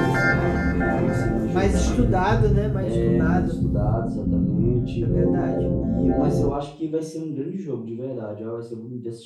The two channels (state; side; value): identical; both; correlation 1.00